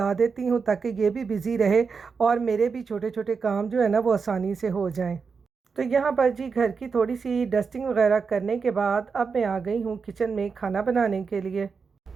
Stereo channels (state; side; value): quieter; left; 5.3 dB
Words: देती हूँ, ताकि ये भी बिज़ी रहे और मेरे भी छोटे छोटे काम जो है ना वो आसानी से हो जाएं। तो यहाँ पर जी घर की थोड़ी सी डस्टिंग वगैरह करने के बाद अब मैं आ गई हूँ किचन में खाना बनाने के लिए।